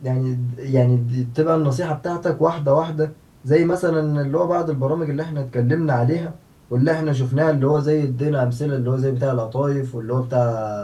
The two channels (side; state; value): both; identical; correlation 1.00